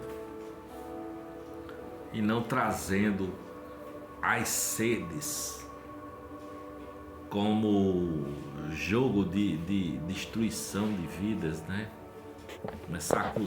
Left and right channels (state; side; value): identical; both; correlation 1.00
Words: e não trazendo as sedes como jogo de destruição de vidas, né? Começar a